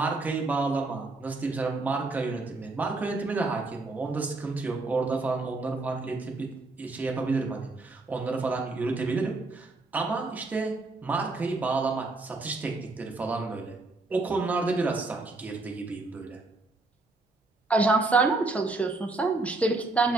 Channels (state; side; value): quieter; left; 3.3 dB